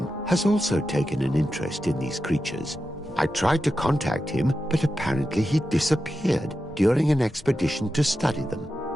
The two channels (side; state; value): both; normal; correlation 0.90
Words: has also taken an interest in these creatures. I tried to contact him, but apparently he disappeared during an expedition to study them.